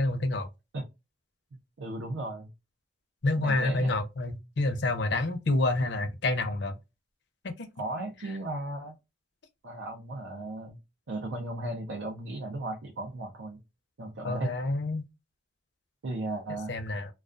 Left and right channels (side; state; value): both; normal; correlation 0.55